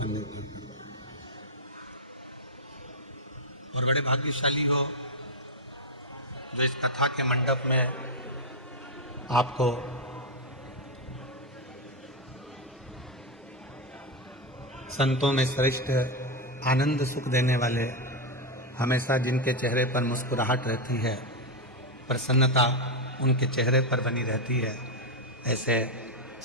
निर्भर करता है। और बड़े भाग्यशाली हो जो इस कथा के मंडप में आपको संतों में श्रेष्ठ आनंद सुख देने वाले, हमेशा जिनके चेहरे पर मुस्कुराहट रहती है, प्रसन्नता उनके चेहरे पर बनी रहती है, ऐसे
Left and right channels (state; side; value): normal; both; correlation 0.05